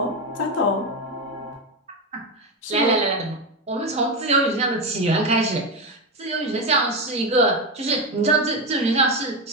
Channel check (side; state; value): both; normal; correlation 0.13